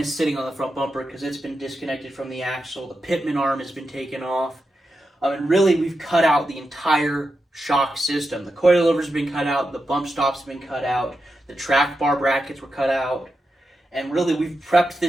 sitting on the front bumper because it's been disconnected from the axle, the pitman arm has been taken off, and really we've cut out the entire shock system. The coilovers have been cut out, the bump stops have been cut out, the track bar brackets were cut out, and really we've prepped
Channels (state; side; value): normal; both; correlation 0.88